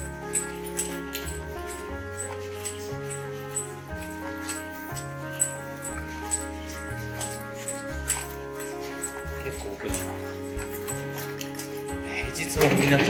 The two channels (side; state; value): both; identical; correlation 1.00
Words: 結構奥だな。平日もみんな